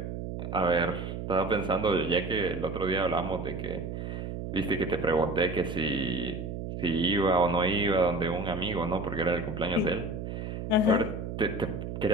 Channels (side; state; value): right; noise; hum, 6 dB below the sound